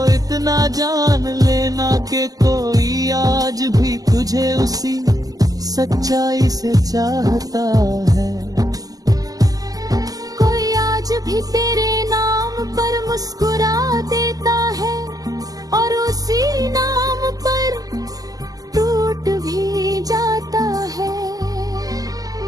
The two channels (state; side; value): late; left; 0.17 ms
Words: इतना जान लेना कि कोई आज भी तुझे उसी सच्चाई से चाहता है। कोई आज भी तेरे नाम पर मुस्कुरा देता है और उसी नाम पर टूट भी जाता है।